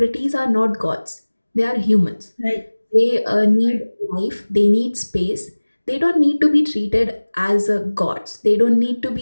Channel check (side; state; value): both; inverted; correlation -1.00